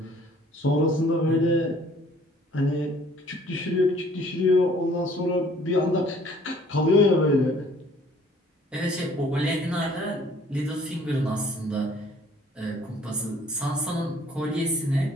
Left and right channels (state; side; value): normal; both; correlation 0.57